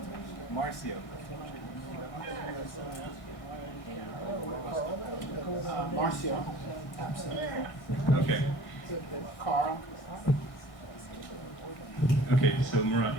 Marcio. Marcio? Absent. Okay. Carl? Okay, so Murat,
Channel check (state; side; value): late; right; 1.6 ms